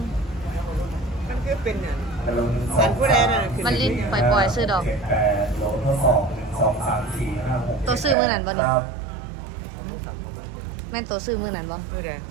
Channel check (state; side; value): drops out; left; at 8.2 s